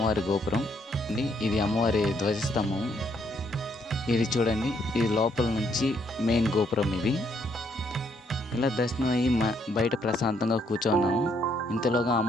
గోపురం అండి. ఇది అమ్మవారి ధ్వజస్తంభం. ఇది చూడండి, ఇది లోపల నుంచి మెయిన్ గోపురం. ఇది ఇలా దర్శనం అయ్యి బయట ప్రశాంతంగా కూర్చున్నాము. ఇంతలోగా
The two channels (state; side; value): normal; both; correlation 0.71